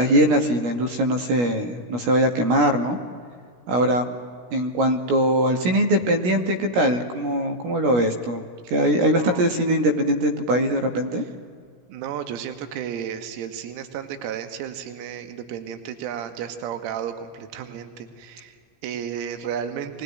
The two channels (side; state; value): left; late; 17 ms